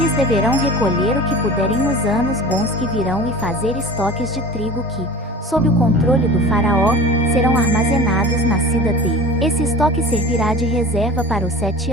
deverão recolher o que puderem nos anos bons que virão e fazer estoques de trigo que, sob o controle do Faraó, serão armazenados na cidade. Esse estoque servirá de reserva para os 7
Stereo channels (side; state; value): both; normal; correlation 0.37